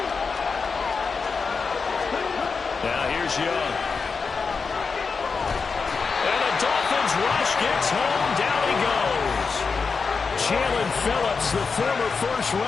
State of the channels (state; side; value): quieter; right; 5.0 dB